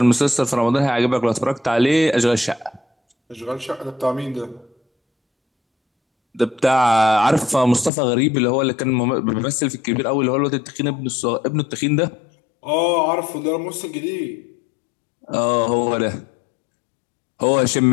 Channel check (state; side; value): drops out; right; at 7.9 s